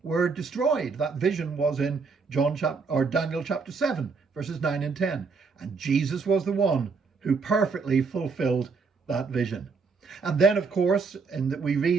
were destroyed. That vision was in Daniel chapter 7, verses 9 and 10. And Jesus was the one who perfectly fulfilled that vision. And then, of course, we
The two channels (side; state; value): left; quieter; 4.8 dB